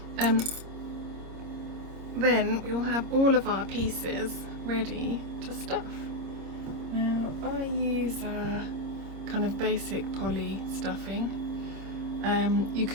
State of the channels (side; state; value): left; late; 26 ms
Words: Then we will have all of our pieces ready to stuff. Now I use kind of basic poly stuffing. You